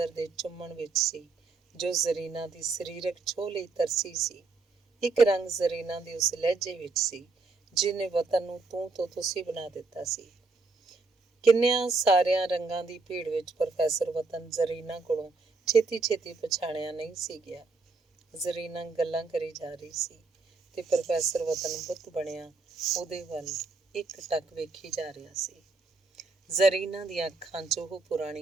ਦੇ ਚੁੰਮਣ ਵਿੱਚ ਸੀ, ਜੋ ਜ਼ਰੀਨਾ ਦੀ ਸਰੀਰਕ ਛੋਹ ਲਈ ਤਰਸੀ ਸੀ। ਇੱਕ ਰੰਗ ਜ਼ਰੀਨਾ ਦੇ ਉਸ ਲਹਿਜੇ ਵਿੱਚ ਸੀ, ਜਿਹਨੇ ਵਤਨ ਨੂੰ ਤੂੰ ਤੋਂ ਤੁਸੀਂ ਬਣਾ ਦਿੱਤਾ ਸੀ। ਕਿੰਨਿਆਂ ਸਾਰਿਆਂ ਰੰਗਾਂ ਦੀ ਭੀੜ ਵਿੱਚ ਪ੍ਰੋਫੈਸਰ ਵਤਨ ਜ਼ਰੀਨਾ ਕੋਲੋਂ ਛੇਤੀ ਛੇਤੀ ਪਛਾਣਿਆ ਨਹੀਂ ਸੀ ਗਿਆ। ਜ਼ਰੀਨਾ ਗੱਲਾਂ ਕਰੀ ਜਾ ਰਹੀ ਸੀ ਤੇ ਪ੍ਰੋਫੈਸਰ ਵਤਨ ਬੁੱਤ ਬਣਿਆ ਉਹਦੇ ਵੱਲ ਇੱਕ ਟੱਕ ਵੇਖੀ ਜਾ ਰਿਹਾ ਸੀ। ਜ਼ਰੀਨਾ ਦੀਆਂ ਅੱਖਾਂ 'ਚ ਉਹ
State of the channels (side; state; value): left; quieter; 3.9 dB